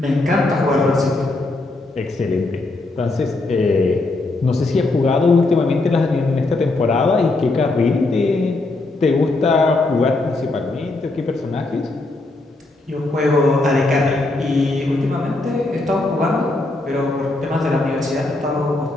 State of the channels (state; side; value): quieter; right; 3.0 dB